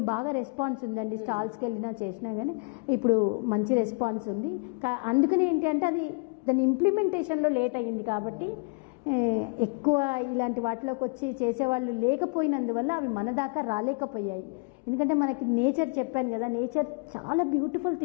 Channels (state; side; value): quieter; right; 33.4 dB